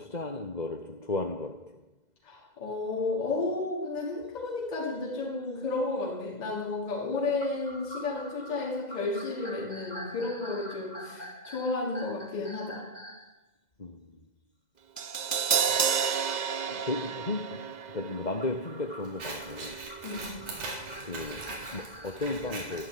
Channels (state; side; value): late; right; 2.0 ms